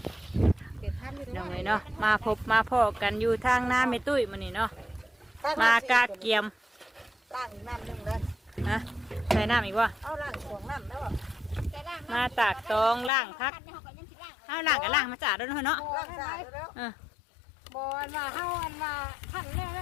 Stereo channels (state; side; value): drops out; right; at 13.1 s